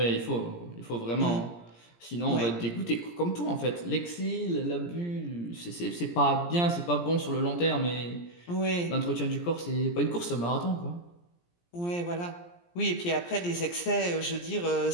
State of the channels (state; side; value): late; right; 17 ms